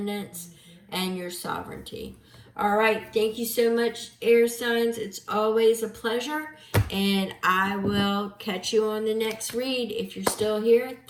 and your sovereignty. All right, thank you so much, air signs. It's always a pleasure, and I will catch you on the next read. If you're still here,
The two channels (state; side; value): identical; both; correlation 1.00